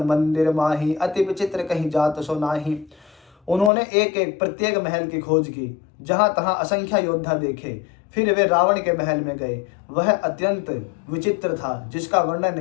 मंदिर माही, अति विचित्र कहीं जात सो नाही। उन्होंने एक एक प्रत्येक महल की खोज की, जहां तहां असंख्य योद्धा देखे। फिर वे रावण के महल में गए। वह अत्यंत विचित्र था, जिसका वर्णन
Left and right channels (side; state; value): right; drops out; at 3.7 s